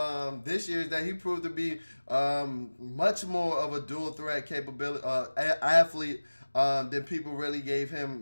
him this year is that he proved to be much more of a dual threat capability athlete than people really gave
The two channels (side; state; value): both; inverted; correlation -1.00